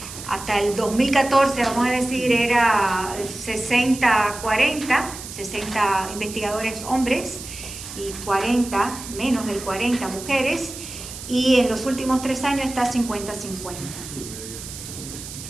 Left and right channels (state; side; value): noise; right; hiss, 11 dB below the sound